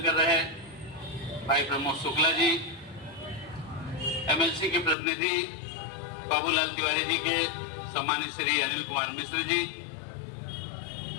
कर रहे भाई प्रमोद शुक्ला जी, एमएलसी के प्रतिनिधि बाबूलाल तिवारी जी के सम्मानित श्री अनिल कुमार मिश्र जी,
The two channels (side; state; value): right; drops out; at 5.0 s